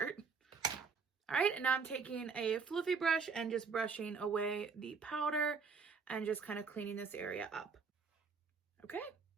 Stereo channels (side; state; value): left; quieter; 5.3 dB